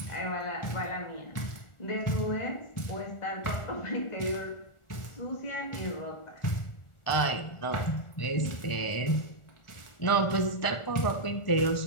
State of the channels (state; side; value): late; right; 1.4 ms